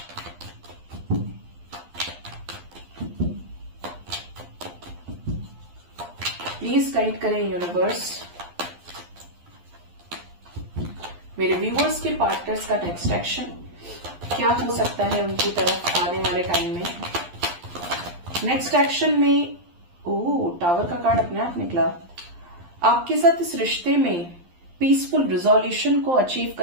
प्लीज गाइड करें यूनिवर्स मेरे व्यूअर्स के पार्टनर्स का नेक्स्ट एक्शन क्या हो सकता है उनकी तरफ आने वाले टाइम में। नेक्स्ट एक्शन में टावर का कार्ड अपने आप निकला। आपके साथ इस रिश्ते में पीसफुल रिजोल्यूशन को अचीव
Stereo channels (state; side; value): late; left; 12 ms